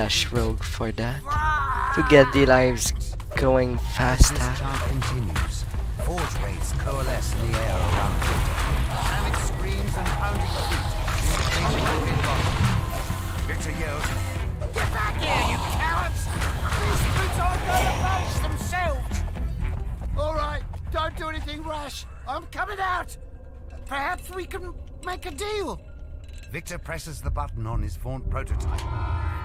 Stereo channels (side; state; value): both; identical; correlation 1.00